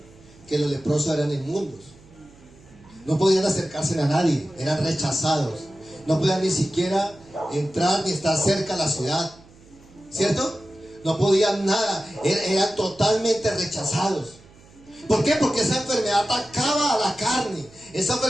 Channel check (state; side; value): noise; right; hum, 25 dB below the sound